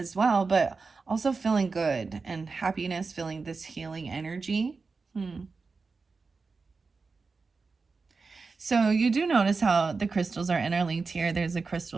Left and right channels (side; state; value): left; quieter; 4.4 dB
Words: well, but also feeling good and happiness, feeling this healing energy. So you do notice how the crystals are interlinked here. There's a